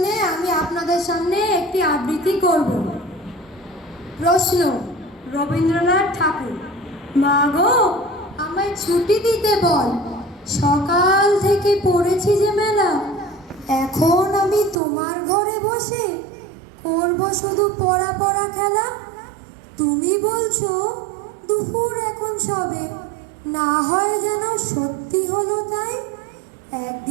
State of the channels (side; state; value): left; drops out; at 14.8 s